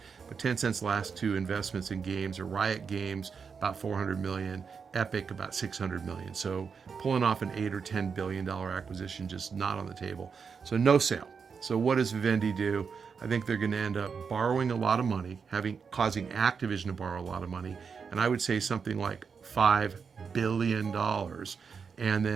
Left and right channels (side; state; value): left; quieter; 5.9 dB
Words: But Tencent's last two investments in games are Riot Games, about $400 million, Epic, about $600 million. So pulling off an $8 or $10 billion acquisition, just not on the table. So no sale. So what does Vivendi do? I think they're going to end up borrowing a lot of money, causing Activision to borrow a lot of money. And I would say something like $5 billion, and